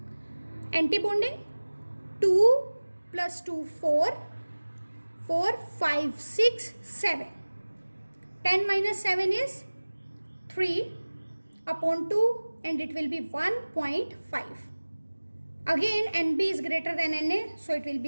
Anti-bonding, 2 plus 2, 4, 4, 5, 6, 7. 10 minus 7 is 3 upon 2, and it will be 1.5. Again NB is greater than Na, so it will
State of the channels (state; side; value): inverted; both; correlation -1.00